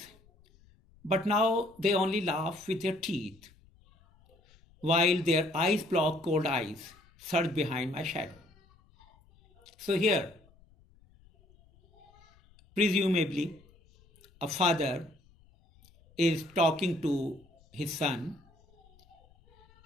but now they only laugh with their teeth, while their eyes block cold eyes surge behind my shadow. So here, presumably, a father is talking to his son,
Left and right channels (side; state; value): left; noise; rumble, 29 dB below the sound